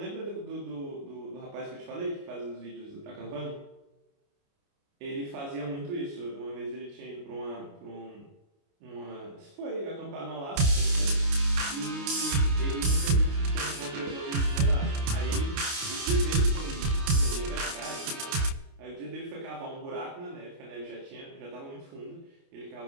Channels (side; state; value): left; late; 29 ms